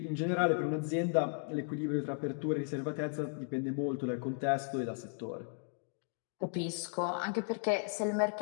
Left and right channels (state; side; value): silent; right; 54 dB below the other